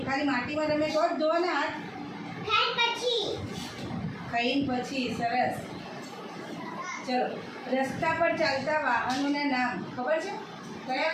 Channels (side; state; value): both; identical; correlation 1.00